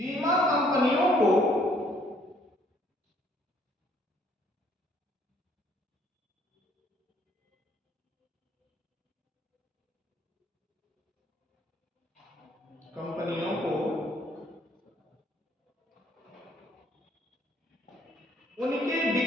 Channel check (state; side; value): normal; both; correlation 0.63